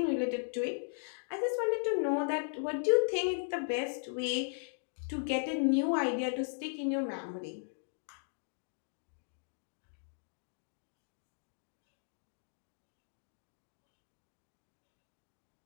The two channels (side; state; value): right; silent; digital silence